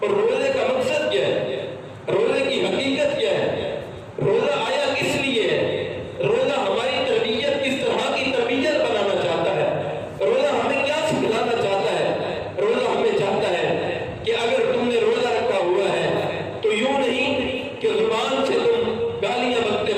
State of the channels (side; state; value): both; identical; correlation 1.00